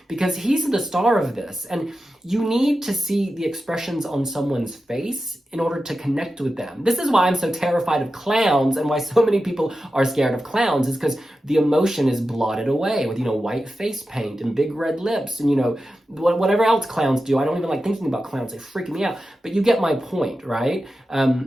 because he's the star of this. And you need to see the expressions on someone's face in order to connect with them. This is why I'm so terrified of clowns and why so many people are scared of clowns, is because the emotion is blotted away with, white face paint and big red lips and, whatever else clowns do. I don't even like thinking about clowns. They freak me out. But you get my point, right?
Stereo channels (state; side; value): normal; both; correlation 0.92